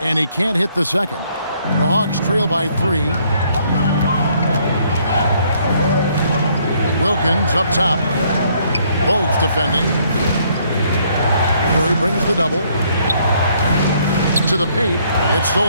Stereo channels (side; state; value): both; inverted; correlation -0.67